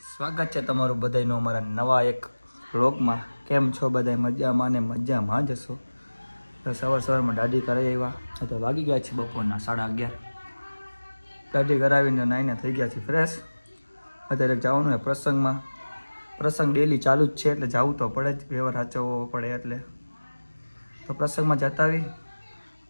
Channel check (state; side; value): inverted; both; correlation -1.00